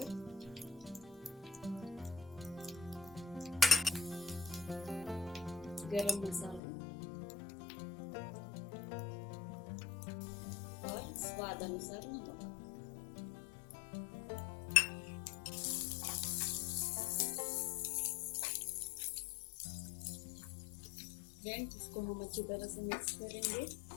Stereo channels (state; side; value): drops out; right; at 6.6 s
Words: गरम मसाला और स्वाद अनुसार नमक। फ्रेंड्स, इसको हम अच्छी तरह से मिक्स करेंगे।